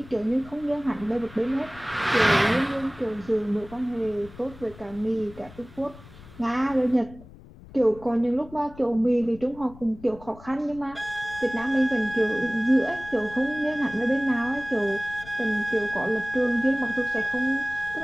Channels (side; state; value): left; noise; rumble, 19 dB below the sound